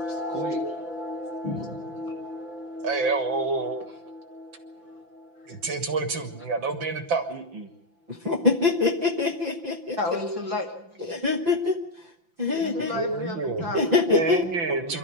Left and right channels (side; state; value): left; late; 5.9 ms